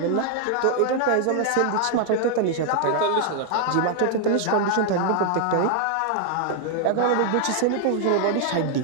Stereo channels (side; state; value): both; different; correlation 0.00